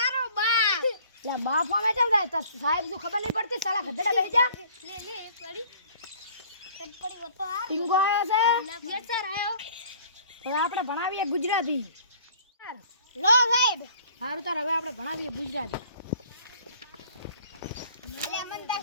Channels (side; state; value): both; inverted; correlation -0.53